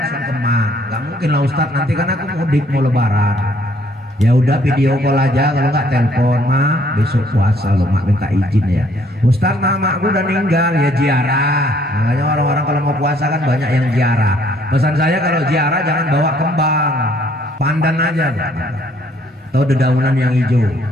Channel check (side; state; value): both; normal; correlation 0.64